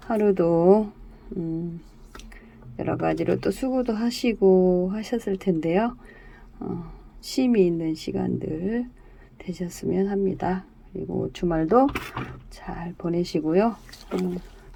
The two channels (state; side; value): identical; both; correlation 1.00